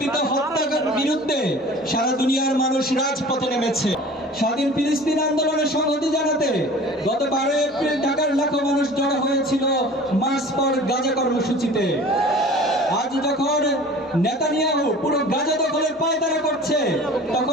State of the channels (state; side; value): normal; both; correlation 0.43